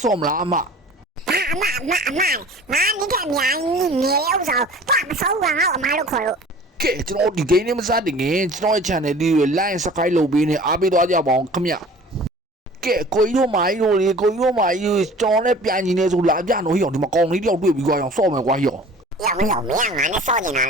ဆော့မလားအမ你看娘你有手抓不手啊我妈都可了ကဲကျွန်တော်ဒီဂိမ်းလေးမစတင်ခင်ကျွန်တော်ရဲ့ channel လေးကို like subscribe လုပ်ပေးနေအားပေးသွားကြပါအောင်ခင်ဗျကဲကိုကြီးတို့မာကြီးတို့လေကိုကြီးတို့မာကြီးကျွန်တော်နဲ့ပြန်ညီနေဆိုလာပြနော်ဟိအောင်ဒီမှာကောင်လေးတယောက်တွေ့ပြီးကွာအောင်ဆော့မယ်ကွာဟိအောင်有没有俺那烧进来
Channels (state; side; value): normal; both; correlation 0.45